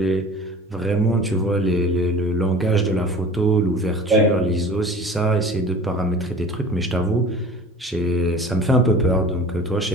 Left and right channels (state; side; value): normal; both; correlation 0.41